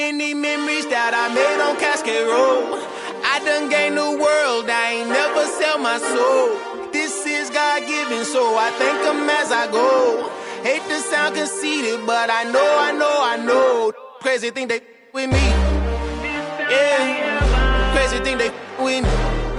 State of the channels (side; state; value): both; identical; correlation 1.00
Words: memories that I made on Cascade Road. I done gained the world, I ain't never sell my soul. This is God-given, so I thank him as I go. Hate to sound conceited, but I know. Crazy thing they with me. Yeah, crazy thing they with me.